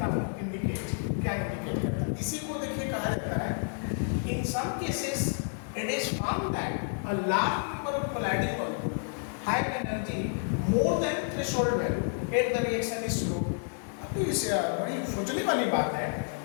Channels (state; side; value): silent; right; 58 dB below the other